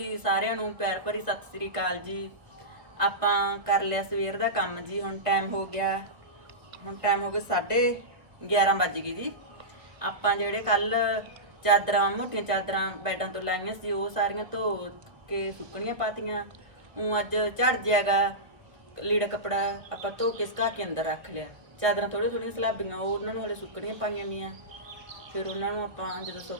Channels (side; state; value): left; late; 1.3 ms